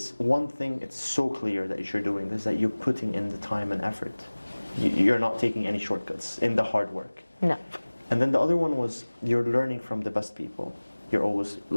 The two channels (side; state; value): both; inverted; correlation -1.00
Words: one thing, it's so clear that you're doing this, that you're putting in the time and effort. You're not taking any shortcuts in the hard work. No. And then the other one was you're learning from the best people. You're always